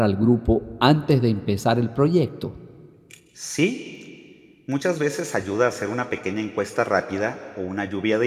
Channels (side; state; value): both; identical; correlation 1.00